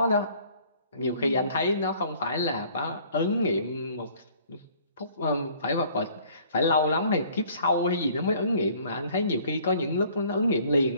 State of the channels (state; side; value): inverted; both; correlation -0.56